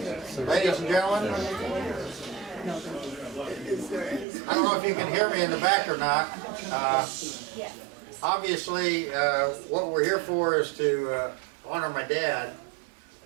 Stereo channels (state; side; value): drops out; left; at 4.2 s